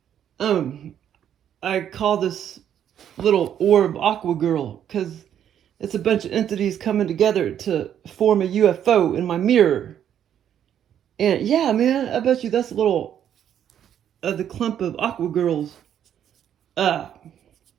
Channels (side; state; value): left; quieter; 9.7 dB